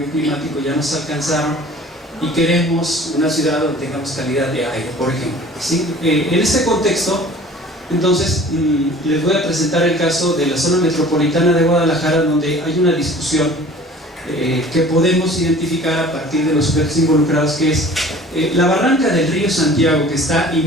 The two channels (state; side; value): normal; both; correlation 0.46